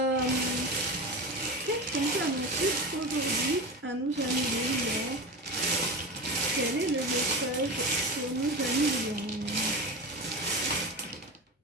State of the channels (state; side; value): normal; both; correlation 0.25